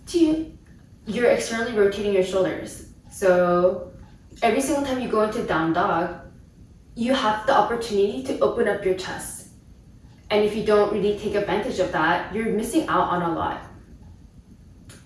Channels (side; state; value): both; identical; correlation 1.00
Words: 2, you're externally rotating your shoulders. So every single time you go into down dog, you have the opportunity to open up your chest. And if you don't really take advantage of that, you're missing out on a lot.